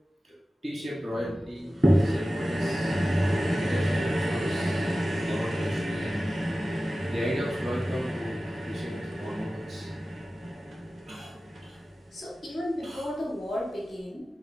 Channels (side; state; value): both; normal; correlation 0.95